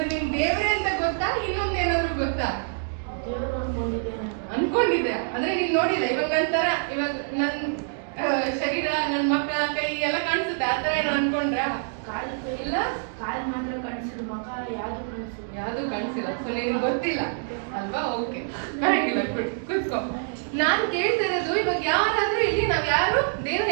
ನಿಮ್ ದೇವ್ರೆ ಅಂತ ಗೊತ್ತಾ? ಇನ್ನೊಂದೇನಾದ್ರು ಗೊತ್ತಾ? ದೇವರು ಅನ್ಕೊಂಡಿದ್ದೆ ಅಂದ್ರೆ ನೀನ್ ನೋಡಿಲ್ಲ. ಇವಾಗ ನನ್ ಶರೀರ, ನನ್ ಮಕ್ಕ, ಕೈ ಎಲ್ಲ ಕಾಣಿಸುತ್ತೆ, ಆತರ ಏನೋ ಅನ್ಕೊಂಡ್ರ? ಇಲ್ಲ, ಕಾಲು ಮಾತ್ರ ಕಾಣಿಸಿದ್ರು, ಮಗ ಯಾವ್ದು ಕಾಣಿಸಿಲ್ಲ. ಸೊ ನಿನ್ಗೆ ಗೊತ್ತಿಲ್ಲ ಅಲ್ವಾ? ಓಕೆ, ಪರವಾಗಿಲ್ಲ, ಕೂತ್ಕೋ. ನಾನ್ ಕೇಳ್ತಿರೋದು, ಇವಾಗ ಯಾರಾದ್ರೂ ಇಲ್ಲಿ ನಾವ್ ಯಾರು ದೇವ್ರು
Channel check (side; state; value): left; silent; digital silence